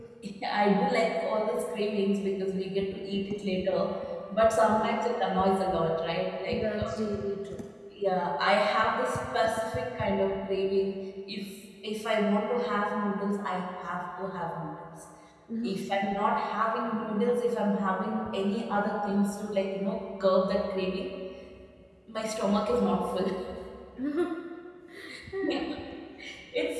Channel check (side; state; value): both; identical; correlation 1.00